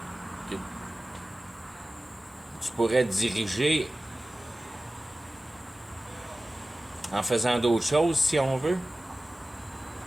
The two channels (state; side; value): normal; both; correlation 0.96